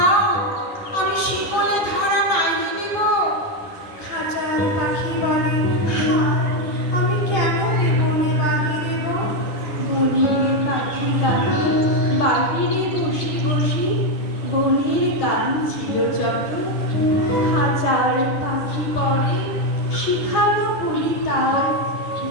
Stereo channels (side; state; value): right; late; 10 ms